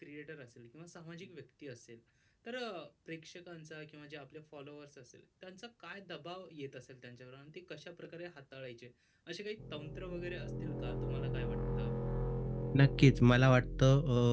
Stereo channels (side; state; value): both; identical; correlation 1.00